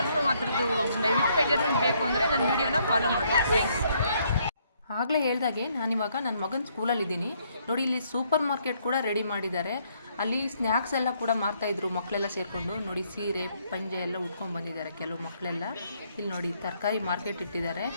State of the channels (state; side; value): inverted; both; correlation -0.70